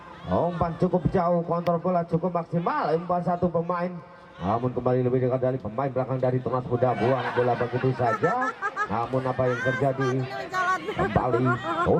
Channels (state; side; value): identical; both; correlation 1.00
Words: Umpan cukup jauh, kontrol bola cukup maksimal, umpan satu pemain, namun kembali lebih dekat dari pemain belakang dari Tunas Muda, buang bola begitu saja. Namun apa yang terjadi? Kembali